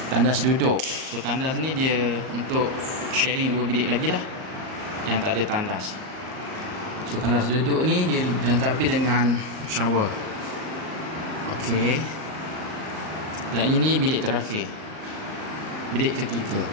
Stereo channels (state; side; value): late; left; 38 ms